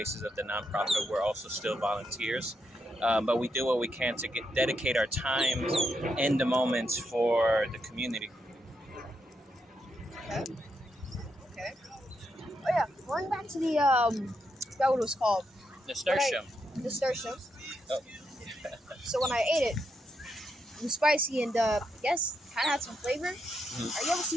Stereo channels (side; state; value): both; normal; correlation 0.81